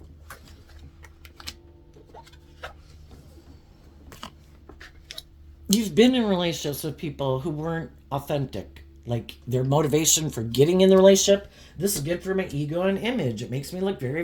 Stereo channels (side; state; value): both; identical; correlation 1.00